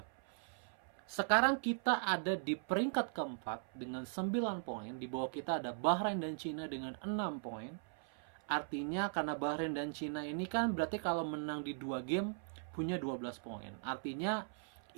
Sekarang kita ada di peringkat keempat dengan 9 poin. Di bawah kita ada Bahrain dan Cina dengan 6 poin. Artinya karena Bahrain dan Cina ini kan berarti kalau menang di 2 game punya 12 poin. Artinya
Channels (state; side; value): silent; left; 51 dB below the other